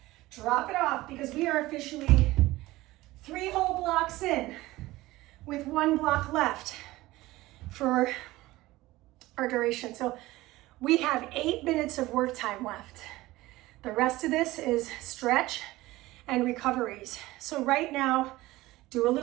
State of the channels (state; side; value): quieter; left; 18.4 dB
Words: Drop it off because we are officially 3 whole blocks in with 1 block left for our duration. So we have 8 minutes of work time left. The rest of this is stretch and recoveries. So right now, do a